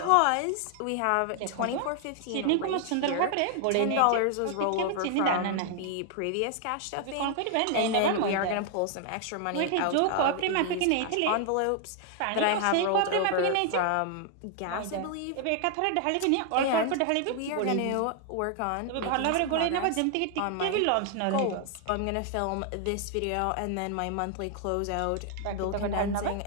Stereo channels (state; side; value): different; both; correlation 0.00